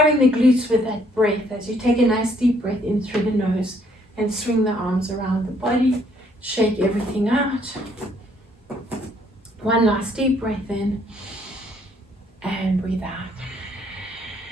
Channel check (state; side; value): normal; both; correlation 0.66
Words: the glutes with that breath as you take a nice deep breath in through the nose and swing the arms around the body. Shake everything out. One last deep breath in and breathe out.